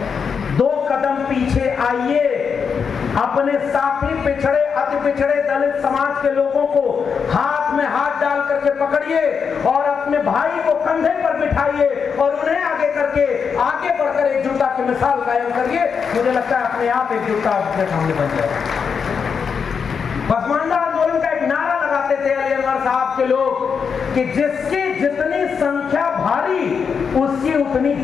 2 कदम पीछे आइए, अपने साथी पिछड़े अति पिछड़े दलित समाज के लोगों को हाथ में हाथ डाल करके पकड़िए और अपने भाई को कंधे पर बिठाइए और उन्हें आगे करके आगे बढ़कर एकजुटता की मिसाल कायम करिए। मुझे लगता है अपने आप एकजुटता अपने सामने बन जाएगा। पसमानदा आंदोलन का एक नारा लगाते थे अली अनवर साहब के लोग कि जिसकी जितनी संख्या भारी उसकी उतनी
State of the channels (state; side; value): quieter; right; 6.2 dB